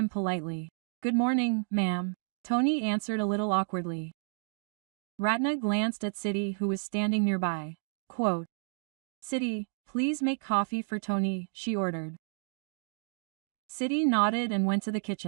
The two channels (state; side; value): silent; left; digital silence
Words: politely. Good morning, ma'am. Tony answered a little awkwardly. Ratna glanced at Siddhi who was standing nearby. Quote, Siddhi, please make coffee for Tony, she ordered. Siddhi nodded and went to the